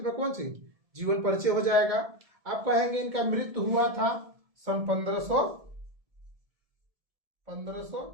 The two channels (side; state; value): left; late; 1.7 ms